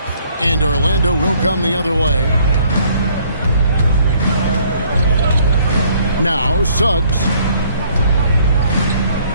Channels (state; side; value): inverted; both; correlation -0.63